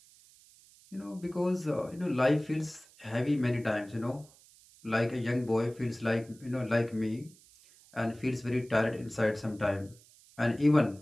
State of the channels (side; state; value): right; noise; hiss, 26 dB below the sound